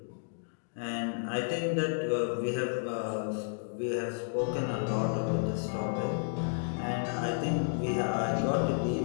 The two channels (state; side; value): silent; right; digital silence